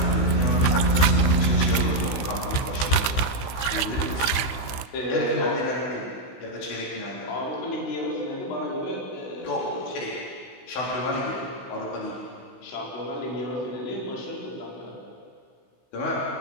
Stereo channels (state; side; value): late; right; 16 ms